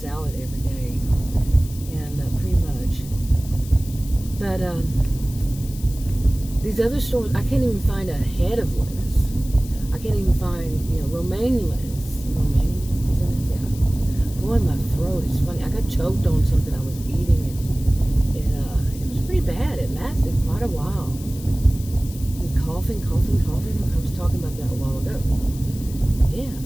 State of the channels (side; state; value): left; noise; hiss, 17 dB below the sound